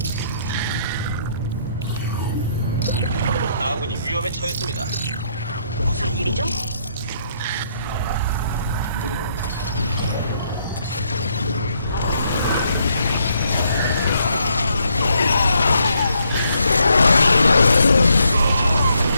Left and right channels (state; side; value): inverted; both; correlation -0.73